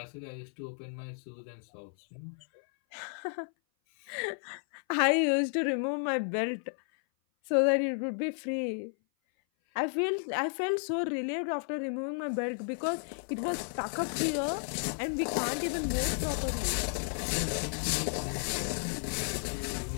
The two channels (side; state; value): right; silent; 56 dB below the other